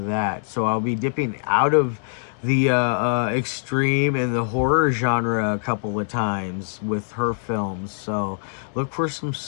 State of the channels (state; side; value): silent; right; digital silence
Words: that. So I'll be dipping out of the extreme and the horror genre a couple of times with her films, so look for